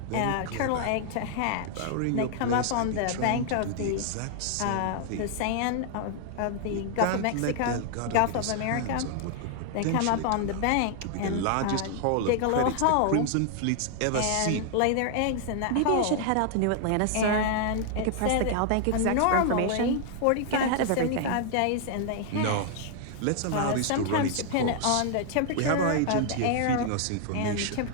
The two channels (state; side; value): different; both; correlation 0.00